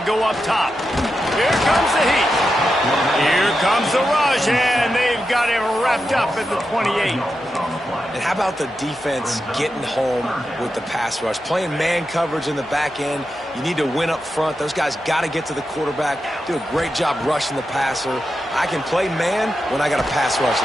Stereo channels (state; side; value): normal; both; correlation 0.88